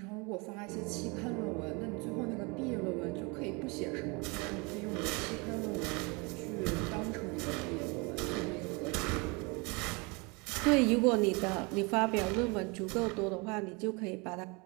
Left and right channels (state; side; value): quieter; left; 28.9 dB